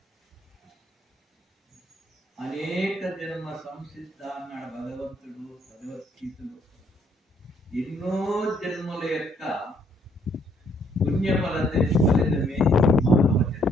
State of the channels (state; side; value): normal; both; correlation 0.68